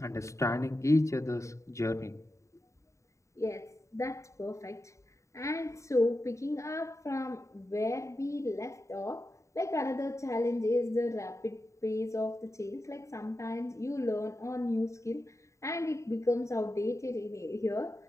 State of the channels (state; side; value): late; right; 0.14 ms